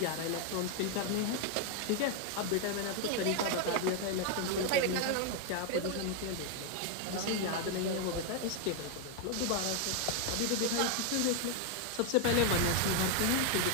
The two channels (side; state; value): both; different; correlation 0.01